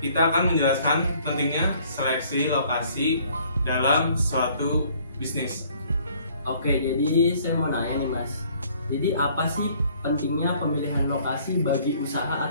akan menjelaskan pentingnya seleksi lokasi dalam suatu bisnis. Oke, jadi saya mau nanya nih Mas. Jadi apa sih pentingnya pemilihan lokasi bagi usaha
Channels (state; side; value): inverted; both; correlation -0.59